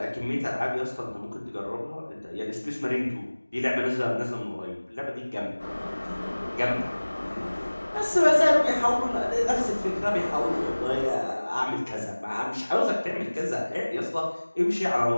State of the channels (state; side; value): inverted; both; correlation -1.00